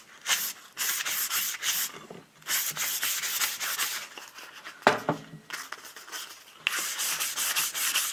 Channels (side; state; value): both; identical; correlation 1.00